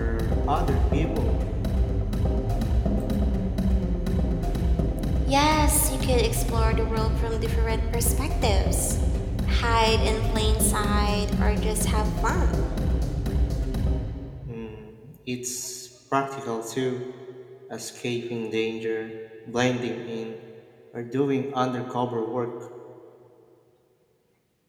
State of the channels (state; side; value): identical; both; correlation 1.00